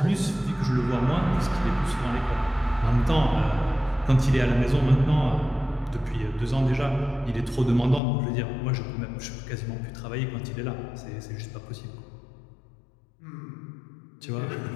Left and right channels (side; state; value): right; drops out; at 8.0 s